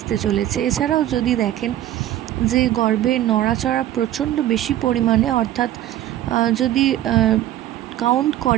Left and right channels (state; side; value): quieter; left; 13.0 dB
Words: চলেছে। এছাড়াও যদি দেখেন যে গর্ভে নড়াচড়া প্রচণ্ড বেশি পরিমাণে, অর্থাৎ যদি কাউন্ট